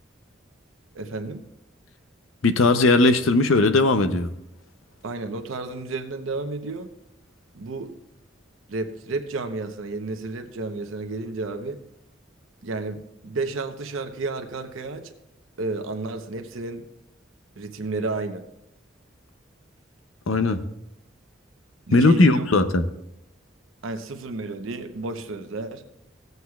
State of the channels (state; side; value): normal; both; correlation 0.38